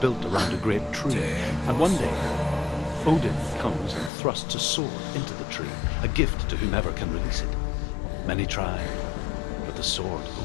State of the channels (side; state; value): right; drops out; at 4.1 s